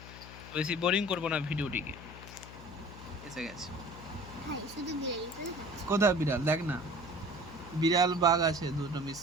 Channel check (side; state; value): left; noise; hum, 15 dB below the sound